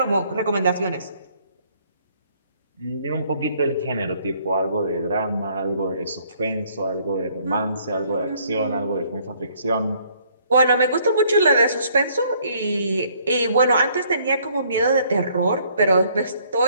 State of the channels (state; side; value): inverted; both; correlation -0.64